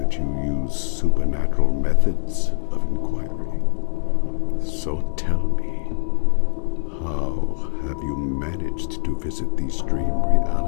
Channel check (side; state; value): right; silent; digital silence